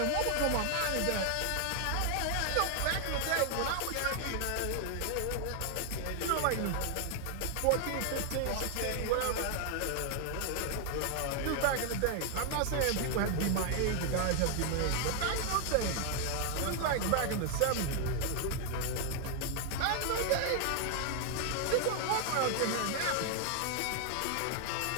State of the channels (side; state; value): both; different; correlation 0.00